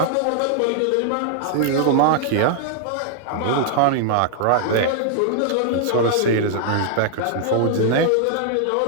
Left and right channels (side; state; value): both; different; correlation 0.00